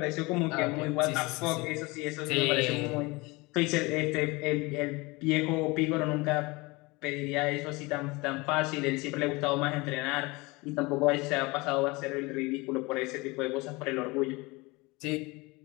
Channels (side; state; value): right; quieter; 24.4 dB